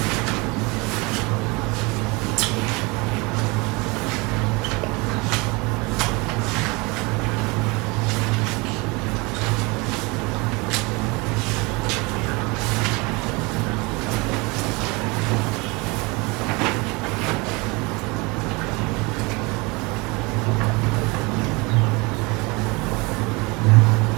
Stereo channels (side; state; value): left; quieter; 26.5 dB